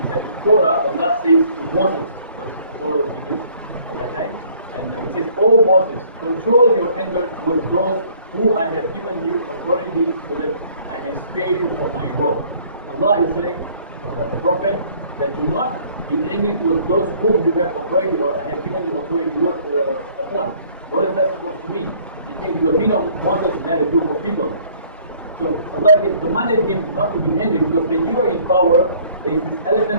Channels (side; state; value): both; inverted; correlation -0.58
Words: that in Torah, Allah says to Moses, because Torah was revealed at that time, and he says, "O Moses, control your anger towards those who I have given you authority so that I may spare you from my wrath." Allah is saying, the Prophet, that do not be angry towards those whom you have authority or I have given you authority upon. What is that supposed to mean? It means because we know Moses led a group of people. So Allah commanded him not to be angry, because when you are in power, there is this